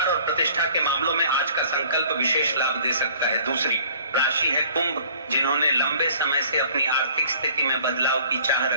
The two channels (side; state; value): both; inverted; correlation -0.53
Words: और प्रतिष्ठा के मामलों में आज का संकल्प विशेष लाभ दे सकता है। दूसरी राशि है कुंभ, जिन्होंने लंबे समय से अपनी आर्थिक स्थिति में बदलाव की चाह